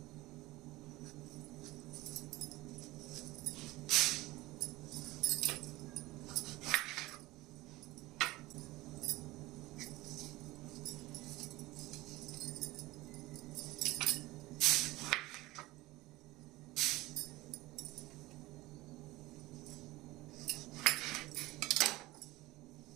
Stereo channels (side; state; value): left; quieter; 19.4 dB